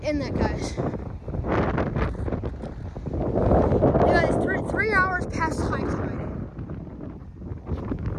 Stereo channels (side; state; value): both; identical; correlation 1.00